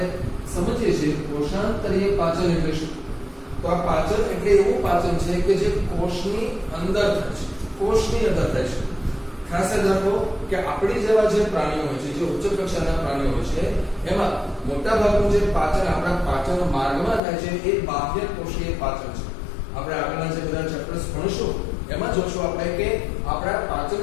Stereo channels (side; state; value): right; drops out; at 17.2 s